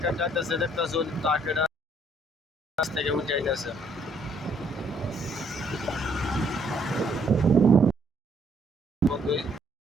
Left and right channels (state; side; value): normal; both; correlation 0.66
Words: যাইতেছে, দেখতেছে ট্রাকের কাছ থেকে উঠে যাইতেছে।